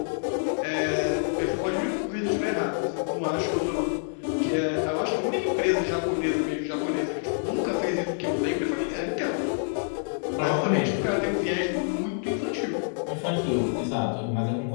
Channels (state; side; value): silent; right; 60 dB below the other